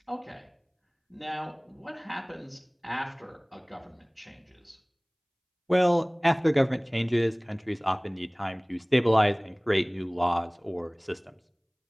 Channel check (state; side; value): identical; both; correlation 1.00